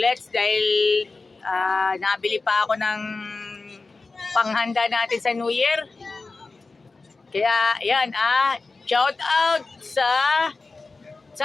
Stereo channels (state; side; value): quieter; right; 3.8 dB